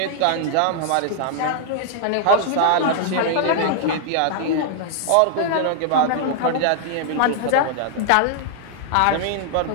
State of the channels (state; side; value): different; both; correlation -0.01